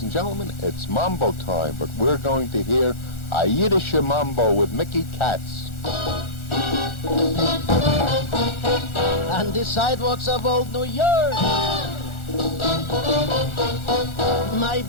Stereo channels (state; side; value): late; right; 1.4 ms